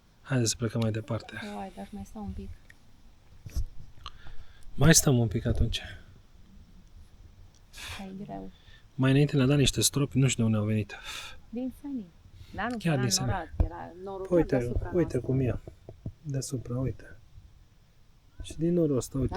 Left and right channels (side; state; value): both; identical; correlation 1.00